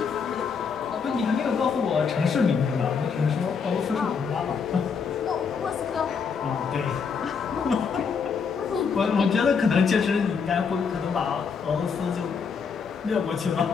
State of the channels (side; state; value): right; quieter; 5.9 dB